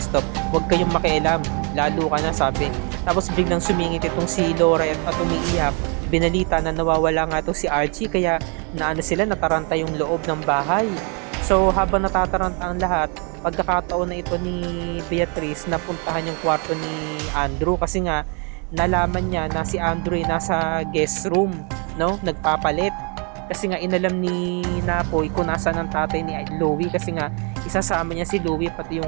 huwag kayong makialam, lalo ka na, sabi. Tapos biglang sumingit itong si Laura at umiiyak. Binalita na nawawala nga itong si Archie, kaya nataranta yung loob ng bahay. So habang natataranta ang lahat, pagkakataon na ito ni Beatrice na puntahan yung kwarto ni Andrew kasi nga nalaman niya na si Andrew ay nasa guest room, no, nagpapalit. Kasi nga inalam ni Napoy kung nasaan ang tatay ni Louie, kasi nga isasama niya si Louie pati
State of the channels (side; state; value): left; quieter; 35.9 dB